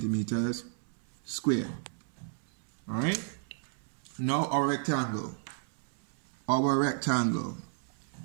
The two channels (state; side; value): silent; left; 56 dB below the other